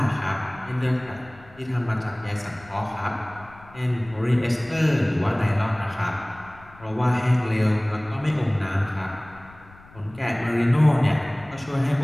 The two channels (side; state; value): left; noise; rumble, 23 dB below the sound